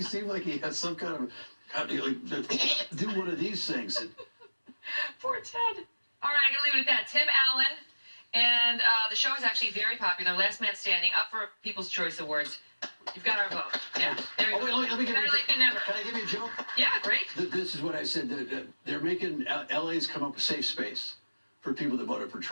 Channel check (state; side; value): inverted; both; correlation -1.00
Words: seem like he had some kind of, do one of these things? Poor Ted. All right, I'm going to leave it at that. Tim Allen, and the show is actually very popular. Last Man Standing, up for People's Choice Awards. You've got our vote. Yeah, there you go. Wait, let me give Better late than never. Can I give you a joke? Yeah, great. This is what I said. They're making LA's come up with safe space for people that voted for